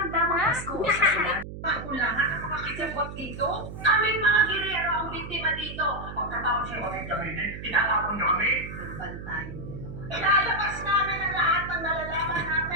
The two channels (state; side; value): noise; right; hum, 10 dB below the sound